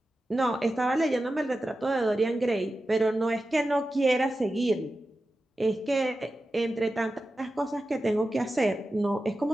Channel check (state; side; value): normal; both; correlation 0.93